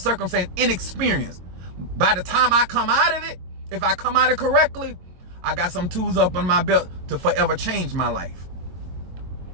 inexperienced, by the time I come out of it, if I come out of it correctly, I got some tools up on my belt to forever change my life.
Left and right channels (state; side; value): late; left; 22 ms